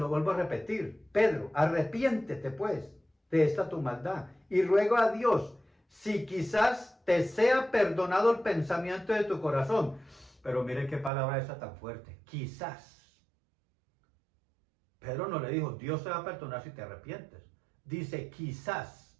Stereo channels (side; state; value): left; drops out; at 11.1 s